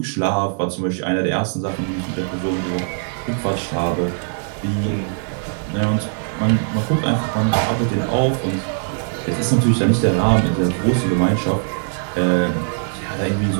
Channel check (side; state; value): left; silent; 63 dB below the other